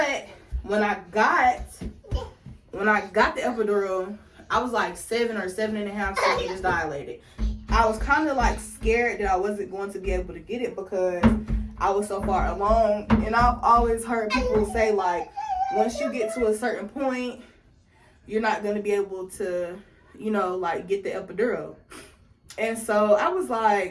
when I got the epidural, I was like 7 or 7.5 centimeters dilated. I was kind of like scared that I wasn't going to be able to get it because I was so far along. And I've always heard people say like, once you get to a certain point, you're not going to be able to, you know, like get the epidural. And so I was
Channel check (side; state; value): both; identical; correlation 1.00